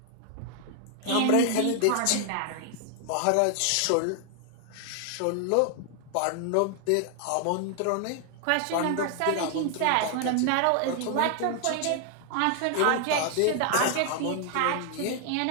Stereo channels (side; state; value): both; different; correlation 0.00